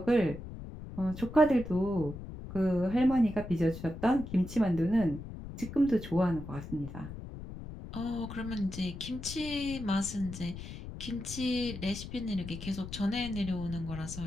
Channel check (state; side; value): noise; left; rumble, 10 dB below the sound